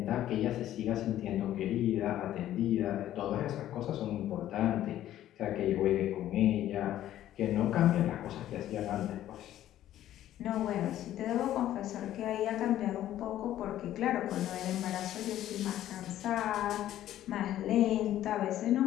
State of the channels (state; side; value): quieter; right; 12.7 dB